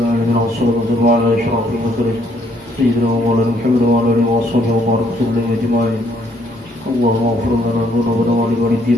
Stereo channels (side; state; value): both; normal; correlation 0.67